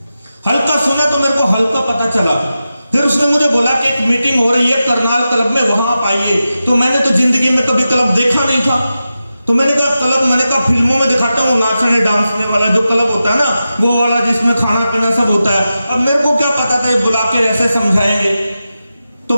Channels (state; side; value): inverted; both; correlation -0.92